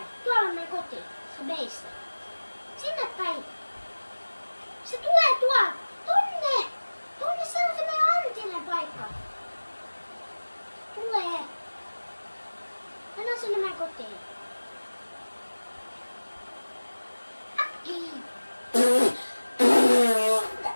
Tuolla on meidän koti. Se meissä. Sinne päin. Se tulee tuolta. Tonne se on se meidän Antinen paikka. Tulee. Mennään sinne meidän kotiin. Äkkiä.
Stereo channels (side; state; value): both; inverted; correlation -1.00